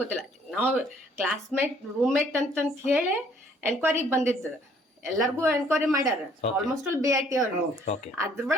ಗೊತ್ತಿಲ್ಲ. ನಾವು ಕ್ಲಾಸ್ಮೇಟ್ ರೂಮ್ಮೇಟ್ ಅಂತಂತ ಹೇಳಿ ಎನ್ಕ್ವೈರಿಗೆ ಬಂದಿದ್ದು, ಎಲ್ಲರಿಗೂ ಎನ್ಕ್ವೈರಿ ಮಾಡ್ಯಾರ. ಆಲ್ಮೋಸ್ಟ್ ಆಲ್ BIT ಅವ್ರು.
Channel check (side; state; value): both; normal; correlation 0.62